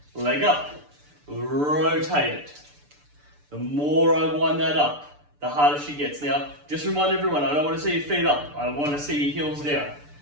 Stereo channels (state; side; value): late; left; 6.8 ms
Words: Leg up. Rotate it. The more I wind that up, the harder she gets. Now, just remind everyone, I don't want to see your feet up. I want to see your heels down.